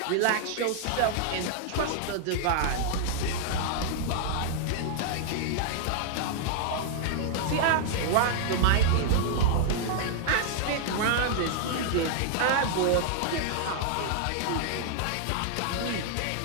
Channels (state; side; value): different; both; correlation -0.01